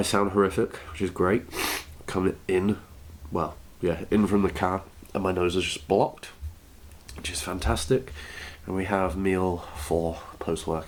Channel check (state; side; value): identical; both; correlation 1.00